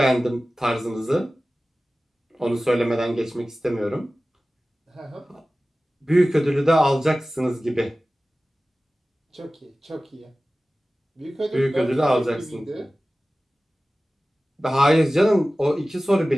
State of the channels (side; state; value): both; normal; correlation 0.97